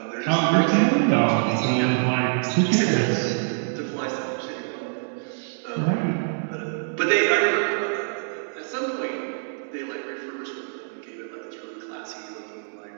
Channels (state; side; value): silent; left; digital silence